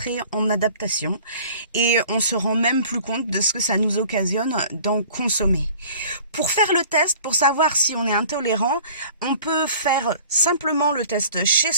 en adaptation et on se rend même plus compte de ce que ça nous occasionne d'en consommer. Pour faire le test, pour savoir si on est intolérant, on peut faire simplement le test chez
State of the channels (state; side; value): inverted; both; correlation -0.48